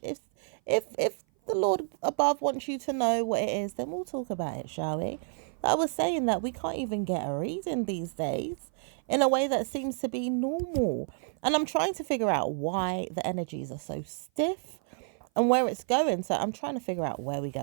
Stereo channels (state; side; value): silent; left; 56 dB below the other